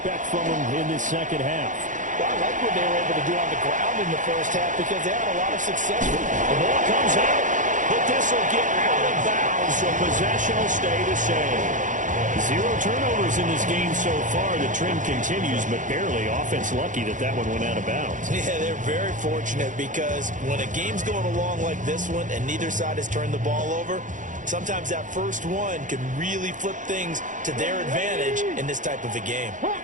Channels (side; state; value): left; late; 0.37 ms